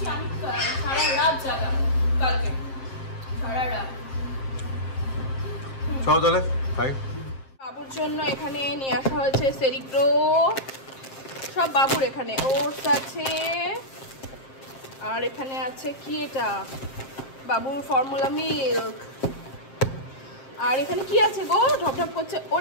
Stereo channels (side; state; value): right; late; 7.6 ms